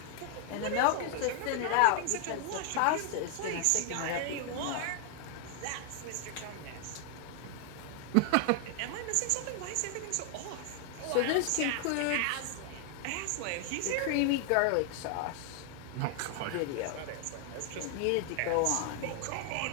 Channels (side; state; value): both; different; correlation 0.00